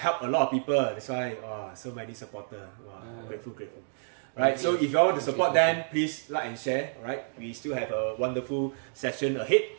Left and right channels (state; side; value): silent; left; digital silence